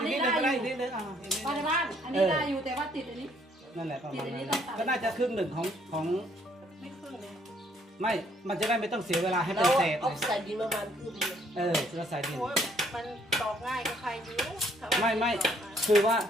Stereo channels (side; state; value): both; normal; correlation 0.66